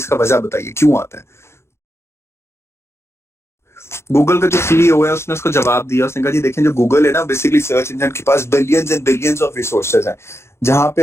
वजह बताइए क्यों आता है। गूगल का जो सीईओ है उसने उसको जवाब दिया, उसने कहा जी देखें जो गूगल है ना, बेसिकली सर्च इंजन के पास billions and billions of resources हैं। जहां पे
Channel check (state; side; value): late; right; 0.13 ms